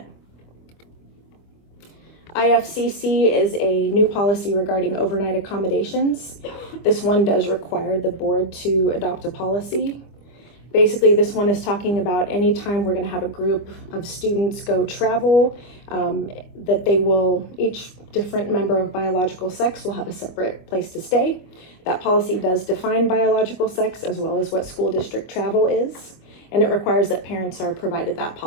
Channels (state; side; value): late; right; 25 ms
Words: IFCC is a new policy regarding overnight accommodations. This one does require the board to adopt a policy. Basically, this one is talking about any time we're going to have a group of students go travel, that they will, each different member of biological sex will have a separate place to stay. That policy does define biological sex as well as what school district travel is, and it requires that parents are provided that